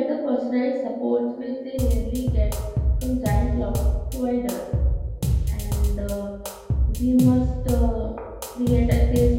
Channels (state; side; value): identical; both; correlation 1.00